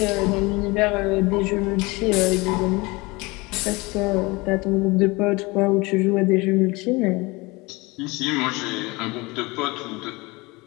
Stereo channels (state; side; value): quieter; right; 24.2 dB